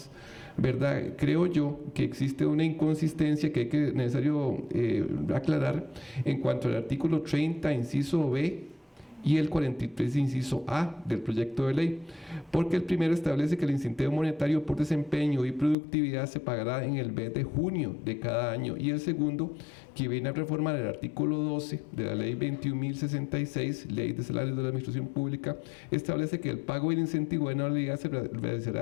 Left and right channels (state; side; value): drops out; right; at 15.8 s